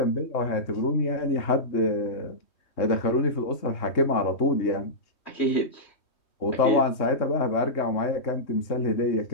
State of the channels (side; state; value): right; late; 3.2 ms